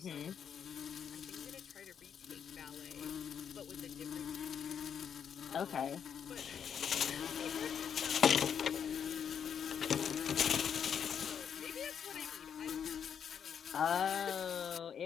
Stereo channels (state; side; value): quieter; right; 7.9 dB